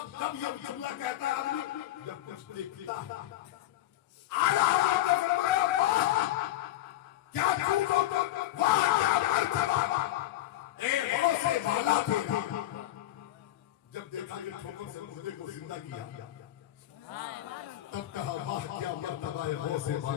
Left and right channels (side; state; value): right; quieter; 14.8 dB